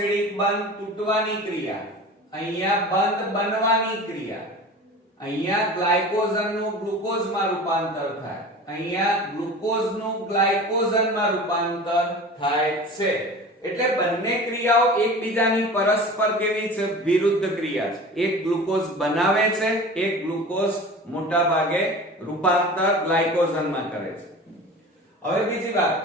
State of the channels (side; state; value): both; normal; correlation 0.37